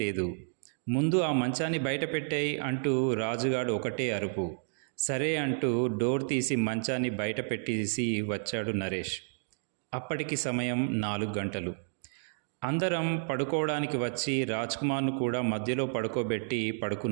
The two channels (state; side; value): silent; left; digital silence